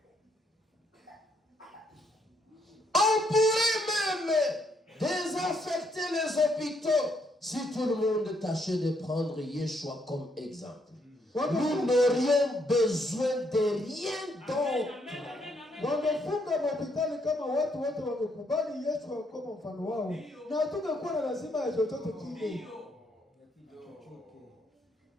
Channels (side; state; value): both; normal; correlation 0.73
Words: on pourrait même désaffecter les hôpitaux si tout le monde tâchait de prendre Yeshua comme exemple. Nous n'aurions besoin de rien d'autre. wangefunga mahospitali kama watu wote wangekubali Yesu kama mfano wao, na hatungekuwa na lazima ya chochote kile.